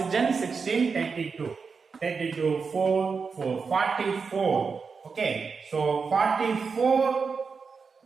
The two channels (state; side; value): quieter; left; 5.2 dB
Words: 16, 32, 4, 44. Okay, so 44